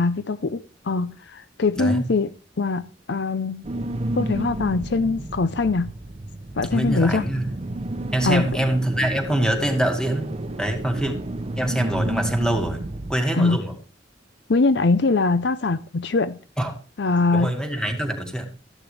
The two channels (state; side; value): normal; both; correlation 0.57